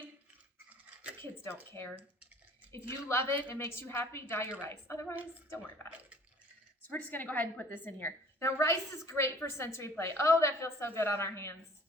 the kids don't care. If you love it, it makes you happy, dye your rice. Otherwise, don't worry about it. So we're just gonna go ahead and put this in here. Now rice is great for sensory play. Oh, that feels so good on our hands.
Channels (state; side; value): normal; both; correlation 0.52